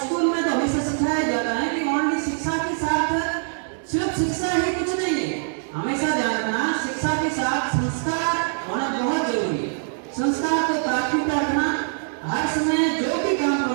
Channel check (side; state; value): left; silent; digital silence